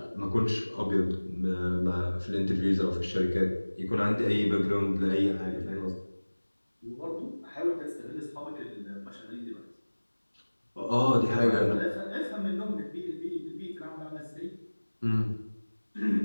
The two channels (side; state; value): both; inverted; correlation -1.00